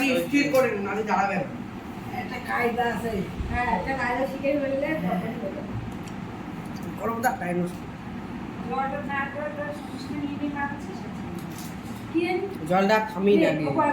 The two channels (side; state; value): both; identical; correlation 1.00